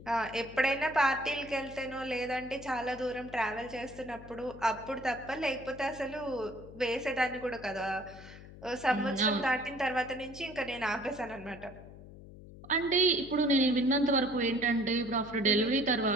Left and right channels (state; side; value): noise; left; hum, 17 dB below the sound